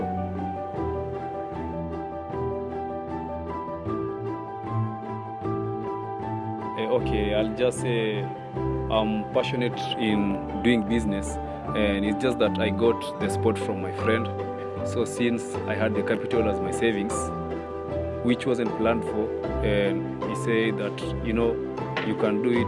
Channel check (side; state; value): both; identical; correlation 1.00